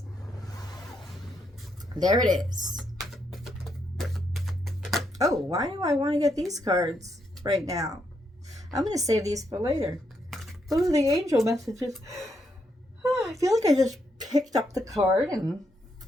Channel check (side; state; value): both; normal; correlation 0.78